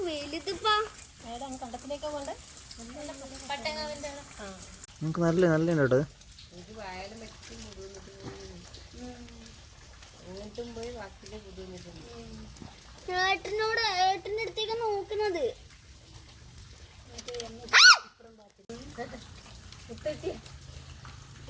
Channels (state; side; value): identical; both; correlation 1.00